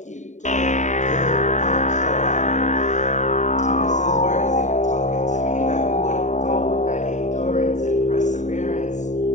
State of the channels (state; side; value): late; right; 0.35 ms